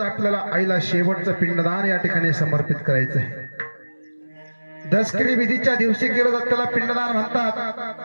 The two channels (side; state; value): both; inverted; correlation -1.00